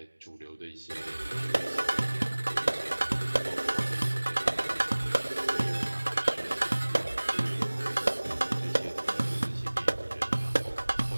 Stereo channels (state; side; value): inverted; both; correlation -1.00